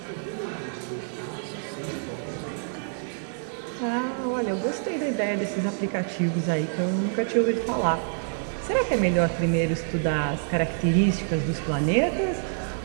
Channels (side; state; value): left; silent; digital silence